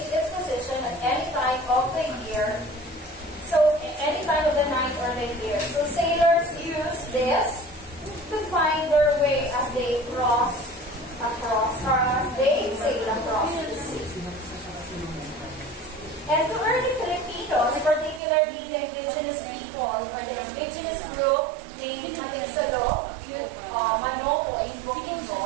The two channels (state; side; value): drops out; left; at 18.2 s